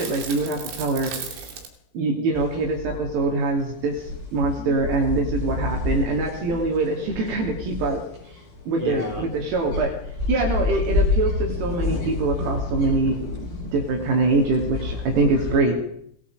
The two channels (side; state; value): left; late; 18 ms